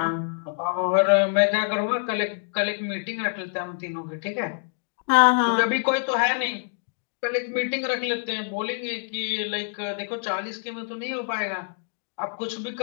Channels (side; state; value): right; silent; digital silence